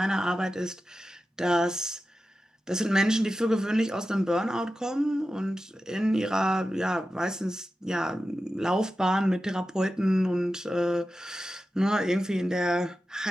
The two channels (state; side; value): normal; both; correlation 0.92